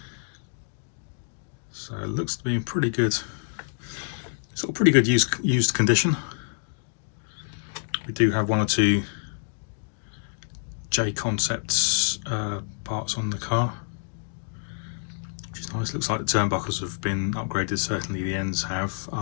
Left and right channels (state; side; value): silent; right; digital silence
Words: So it looks to be in pretty good used condition. We do have one or two J Concepts parts on the car, which is nice. Looks like the turnbuckles have been upgraded. Certainly the ends have.